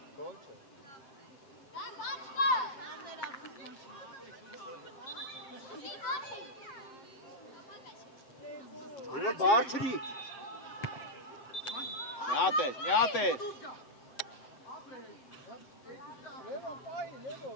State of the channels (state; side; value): late; right; 7.8 ms